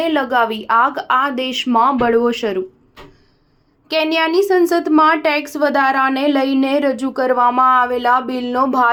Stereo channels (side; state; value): both; identical; correlation 1.00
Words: લગાવી આગ, આ દેશમાં બળવો શરૂ। કેન્યાની સંસદમાં ટેક્સ વધારાને લઈને રજૂ કરવામાં આવેલા બિલનો